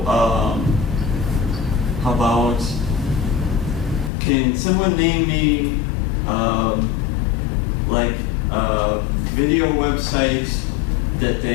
how about, can someone name me, video websites that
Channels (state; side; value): drops out; right; at 4.1 s